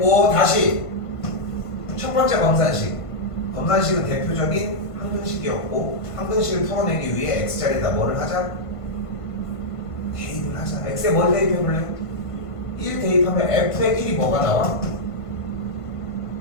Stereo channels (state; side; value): late; right; 1.5 ms